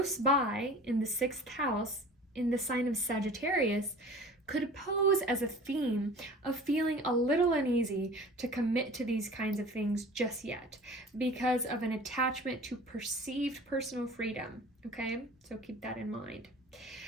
by in the 6th house in the sign of Sagittarius, could pose as a theme of feeling a little uneasy to commit to these kinds of things just yet because of an attachment to perceived personal freedom, okay? So keep that in mind.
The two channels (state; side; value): normal; both; correlation 0.43